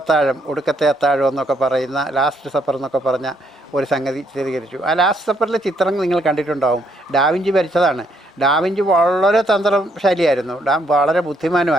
ഒടുക്കത്തെ അത്താഴം എന്നൊക്കെ പറയുന്ന, ലാസ്റ്റ് സപ്പർ എന്നൊക്കെ പറഞ്ഞ ഒരു സംഗതി ചിത്രീകരിച്ചു. ആ ലാസ്റ്റ് സപ്പറിലെ ചിത്രം നിങ്ങൾ കണ്ടിട്ടുണ്ടാവും. ഡാവിഞ്ചി വരച്ചതാണ്. ഡാവിഞ്ചി വളരെ തന്ത്രശാലിയായിരുന്നു, വളരെ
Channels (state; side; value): normal; both; correlation 0.71